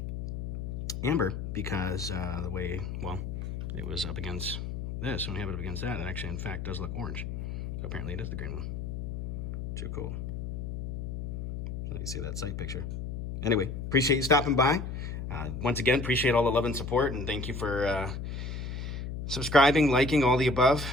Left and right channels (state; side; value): noise; left; hum, 5 dB below the sound